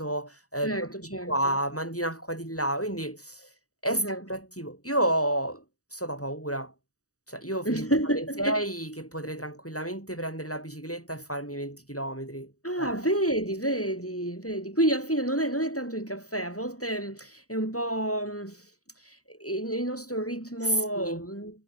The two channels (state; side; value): late; right; 0.66 ms